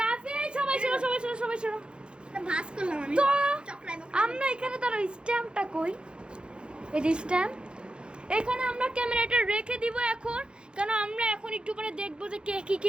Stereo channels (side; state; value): left; late; 0.053 ms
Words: রাফি। সবাই শোনো ভাস করলাম আমি। তো চকরাই আমরা এখানে তার স্ট্যাম্পটা কই, এই যে স্ট্যাম্প, এখানে আমরা ক্যামেরাটা রেখে দিব এখন, কারণ আমরা এখন একটু পরে দেখবো যে কে